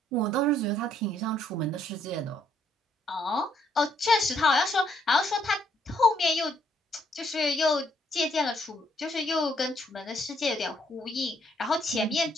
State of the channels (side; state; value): both; normal; correlation 0.70